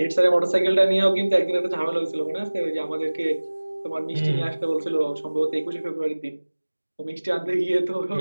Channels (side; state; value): both; inverted; correlation -1.00